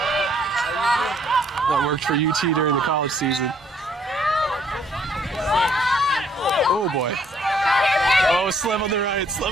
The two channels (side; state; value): both; normal; correlation 0.66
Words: That worked for UT during the college season. Oh boy. Oh, Slev on the right,